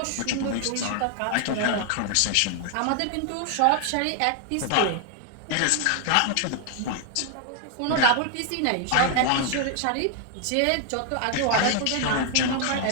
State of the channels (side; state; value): both; different; correlation 0.00